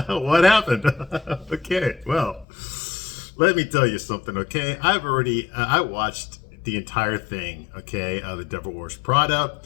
What happened? Okay, well, let me tell you something. Okay, I watched the entire thing. Okay, The Devil Wears Prada.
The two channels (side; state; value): right; drops out; at 2.5 s